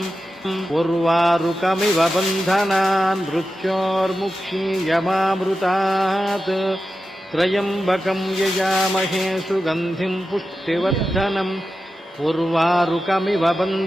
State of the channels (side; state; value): both; normal; correlation 0.91